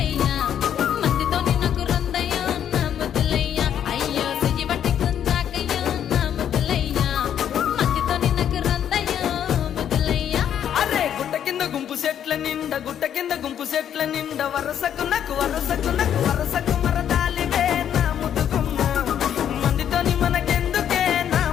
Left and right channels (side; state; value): right; quieter; 9.6 dB